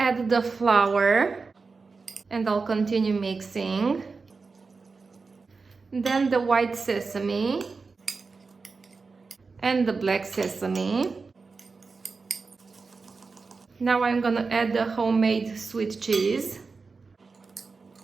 the flour and I'll continue mixing. Then the white sesame and the black sesame. Now I'm gonna add the homemade sweet cheese.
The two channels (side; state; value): left; quieter; 4.4 dB